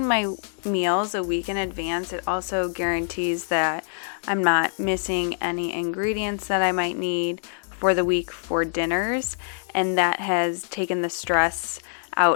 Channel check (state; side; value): silent; right; 62 dB below the other